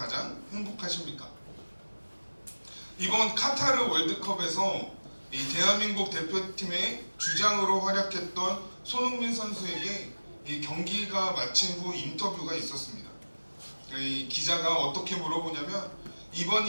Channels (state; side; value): inverted; both; correlation -1.00